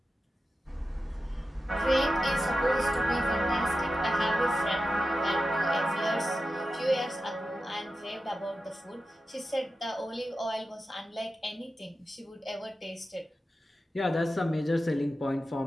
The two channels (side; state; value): both; normal; correlation 0.92